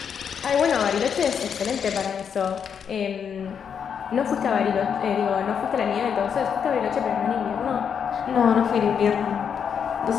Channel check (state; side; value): quieter; right; 7.3 dB